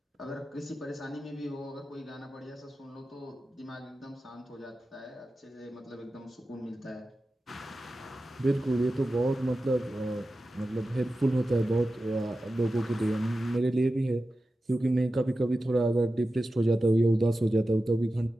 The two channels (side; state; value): both; normal; correlation 0.93